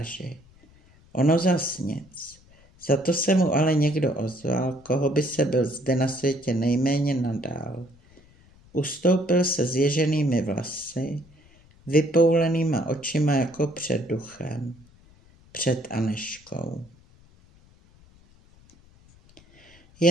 Ono zas nic. Za to se mu ale někdo ozval, koho by se byl zde na světě nejméně nadál. Ustoupil se zježenými vlasy, vypoulenýma očima jako před duchem, před Anežkou.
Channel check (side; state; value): left; noise; rumble, 28 dB below the sound